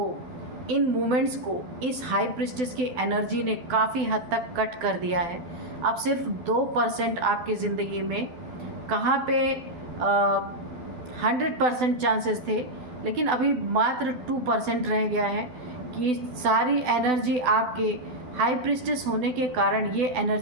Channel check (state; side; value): late; left; 12 ms